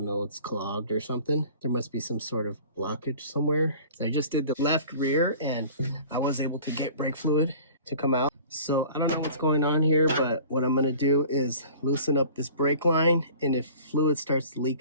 know, it's clogged or something. There must be some sort of blockage somewhere. I just did the left rear and I was able to get brake fluid to come out. So I don't know what's going on here, but what I'm gonna do is loosen up this brake line, and if fluid starts to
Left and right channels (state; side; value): inverted; both; correlation -0.45